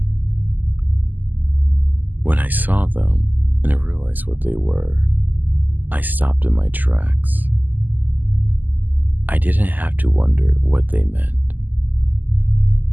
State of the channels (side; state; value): left; late; 0.085 ms